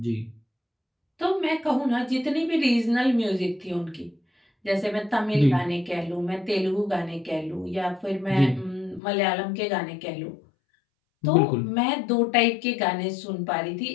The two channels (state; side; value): drops out; right; at 9.0 s